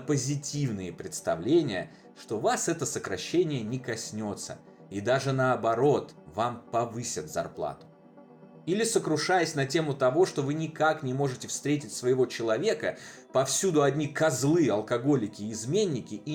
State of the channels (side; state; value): both; identical; correlation 1.00